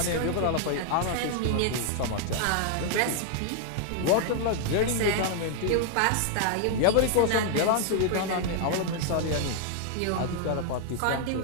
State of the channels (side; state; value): both; different; correlation 0.00